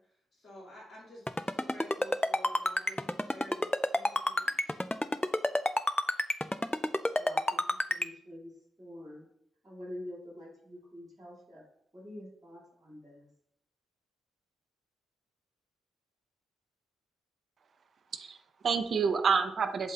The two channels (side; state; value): both; normal; correlation 0.88